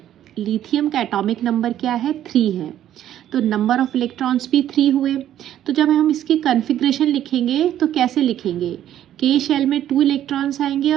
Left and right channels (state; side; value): quieter; left; 11.5 dB